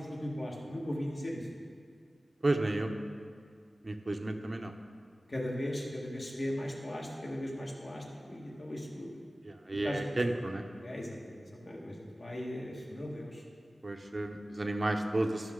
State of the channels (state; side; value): normal; both; correlation 0.97